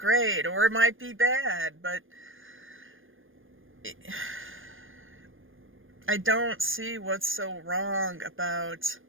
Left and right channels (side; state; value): left; late; 0.59 ms